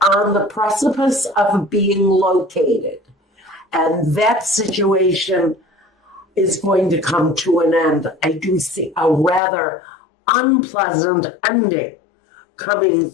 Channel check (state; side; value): drops out; right; at 9.4 s